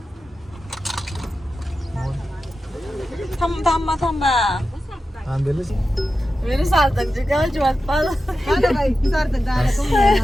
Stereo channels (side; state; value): both; normal; correlation 0.92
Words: थांबा थांबा. आंबेलच मेरे सार्थक जी गावची वाट पाहत.